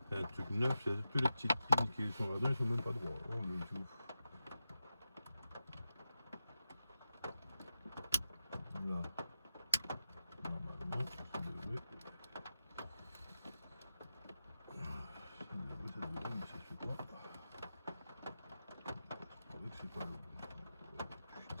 C'est un truc neuf, c'est tous les petites pins qui sont là-dedans, ils sont même pas droits. Oh le tout. Là, normalement, ça devrait, mais ça se fait pas. C'est vrai que c'est pas bon.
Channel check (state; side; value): inverted; both; correlation -0.90